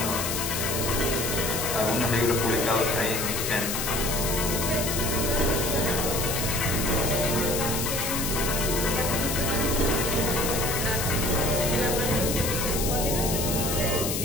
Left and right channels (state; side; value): noise; left; hiss, 2 dB below the sound